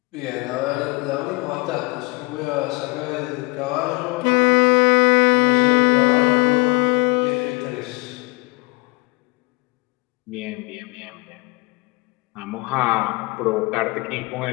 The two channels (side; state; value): right; quieter; 26.5 dB